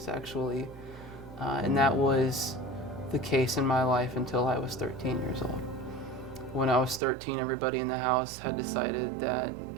And that was the case in my life until I was 13 years old. When I was 13, everybody in the house had decided that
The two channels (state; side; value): drops out; left; at 7.0 s